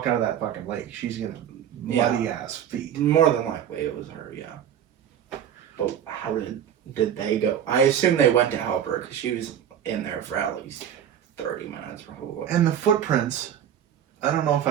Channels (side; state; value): left; quieter; 9.6 dB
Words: out of that fucking lake, she's gonna muddy ass feet. More than likely it was her, yeah. But how did they go? I assume they went to help her because she was in there for at least 30 minutes probably. And the footprints, I don't know if